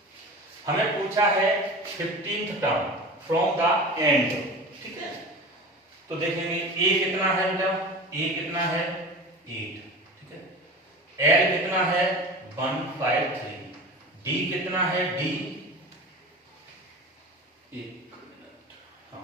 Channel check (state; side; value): normal; both; correlation 0.34